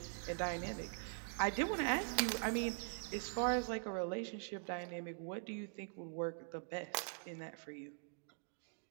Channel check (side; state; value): left; silent; digital silence